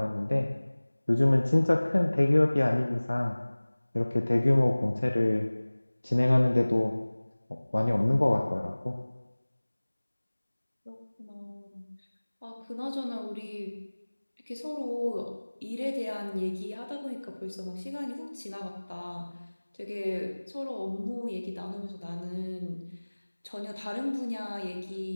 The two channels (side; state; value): both; inverted; correlation -1.00